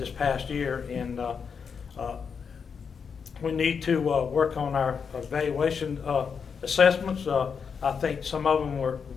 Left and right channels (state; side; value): quieter; right; 6.2 dB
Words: past year, and we need to work on our valuation assessments. I think some of them were